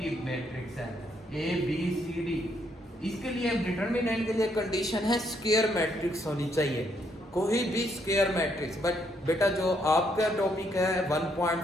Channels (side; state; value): both; normal; correlation 0.73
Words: मैट्रिक्स है ए बी सी डी, इसके लिए डिटर्मिनेंट के लिए कंडीशन है स्क्वायर मैट्रिक्स होनी चाहिए, कोई भी स्क्वायर मैट्रिक्स। बट बेटा जो आपका टॉपिक है